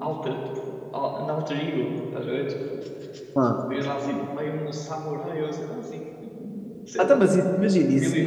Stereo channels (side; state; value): both; identical; correlation 1.00